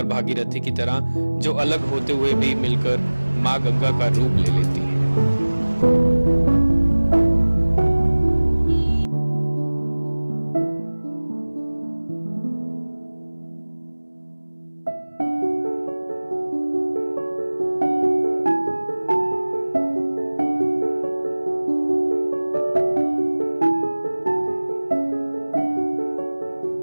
भागीरथी की तरह, जो अलग होते हुए भी मिलकर मां गंगा का रूप ले लेती है।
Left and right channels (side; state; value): both; inverted; correlation -1.00